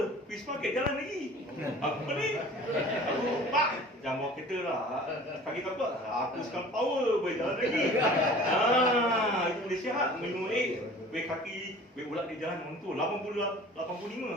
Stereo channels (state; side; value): normal; both; correlation 0.45